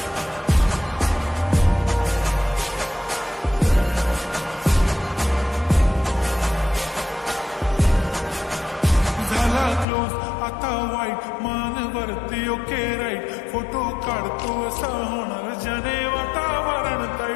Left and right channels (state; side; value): drops out; right; at 9.9 s